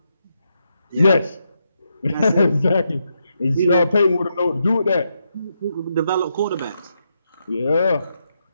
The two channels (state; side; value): inverted; both; correlation -0.82